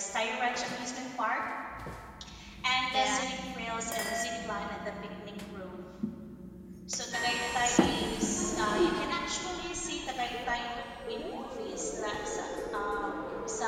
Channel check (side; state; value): both; identical; correlation 1.00